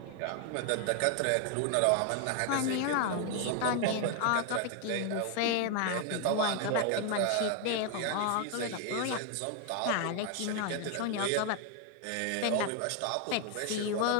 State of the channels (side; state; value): both; different; correlation 0.00